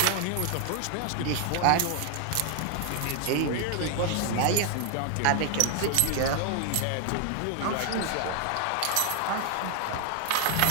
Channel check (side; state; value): both; different; correlation 0.00